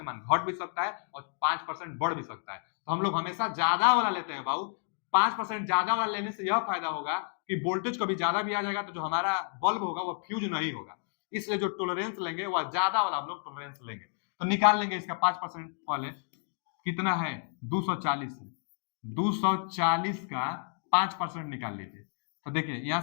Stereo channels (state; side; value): silent; right; 57 dB below the other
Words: मान घट भी सकता है और 5% बढ़ भी सकता है। तो हम लोग हमेशा ज्यादा वाला लेते हैं बाबू। 5% ज्यादा वाला लेने से यह फायदा होगा कि वोल्टेज कभी ज्यादा भी आ जाएगा तो जो हमारा बल्ब होगा वो फ्यूज नहीं होगा। इसलिए जो टॉलरेंस लेंगे वह ज्यादा वाला हम लोग टॉलरेंस लेंगे। तो निकाल लेंगे इसका 5% वाले, कितना है 240। 240 का 5% निकाल लीजिए। तो देखिए यहाँ